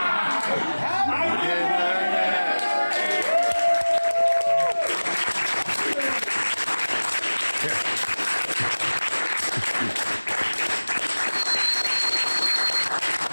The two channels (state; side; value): inverted; both; correlation -1.00